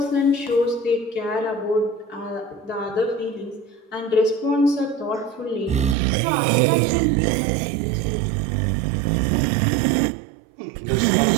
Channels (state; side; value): drops out; left; at 6.0 s